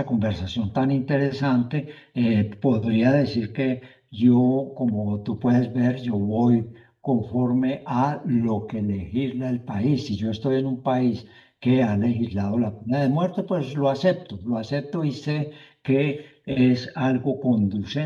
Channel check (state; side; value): identical; both; correlation 1.00